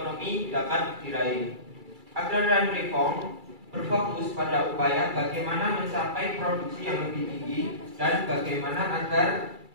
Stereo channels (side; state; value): left; late; 2.3 ms